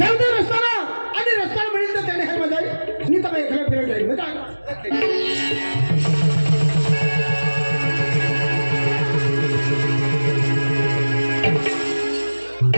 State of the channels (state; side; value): inverted; both; correlation -1.00